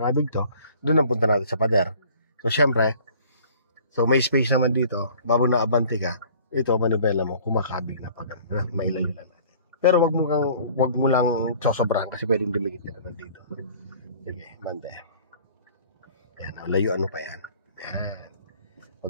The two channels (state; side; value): inverted; both; correlation -0.51